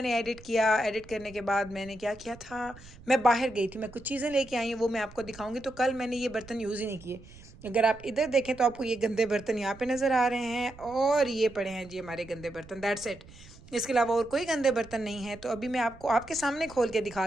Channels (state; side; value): noise; right; rumble, 20 dB below the sound